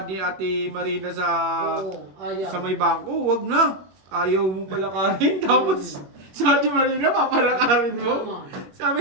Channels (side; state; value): left; late; 21 ms